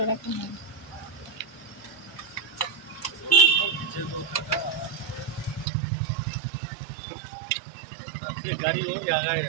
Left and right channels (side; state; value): left; drops out; at 5.7 s